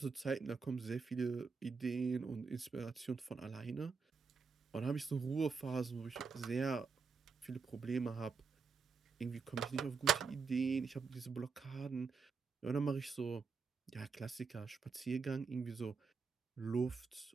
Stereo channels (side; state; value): left; quieter; 5.1 dB